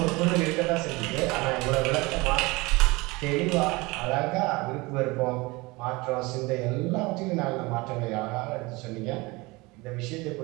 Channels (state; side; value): quieter; left; 23.7 dB